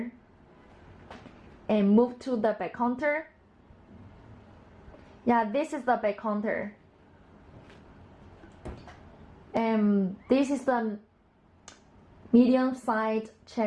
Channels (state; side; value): identical; both; correlation 1.00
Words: And move to the back counter. Yeah, this is the back counter. And this is the medium side,